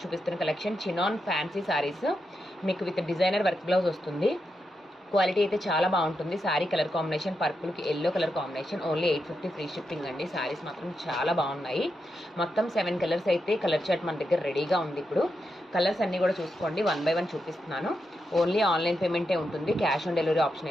చూపిస్తున్న కలెక్షన్ చినాన్ ఫ్యాన్సీ సారీస్. మీకు విత్ డిజైనర్ వర్క్ బ్లౌజ్ వస్తుంది. క్వాలిటీ అయితే చాలా బాగుంటుంది. శారీ కలర్ కాంబినేషన్ పర్పుల్కి yellow colour combination. Only 850 free shipping అండి. శారీస్ మాత్రం చాలా బాగున్నాయి. మొత్తం 7 కలర్స్ అయితే కలర్ చార్ట్ మన దగ్గర రెడీగా ఉంది. ఇప్పుడు కలర్స్ అన్నీ కూడా చూసుకోండి. 1 by 1 చూపిస్తున్నాను. ఓన్లీ ఆన్లైన్ పేమెంటే ఉంటుంది. క్యాష్ ఆన్ డెలివరీ ఆప్షన్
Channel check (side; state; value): both; normal; correlation 0.85